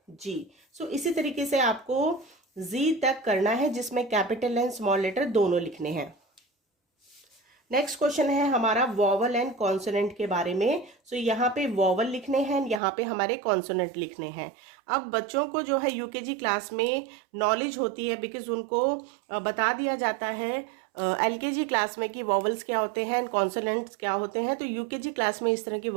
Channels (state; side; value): drops out; left; at 12.8 s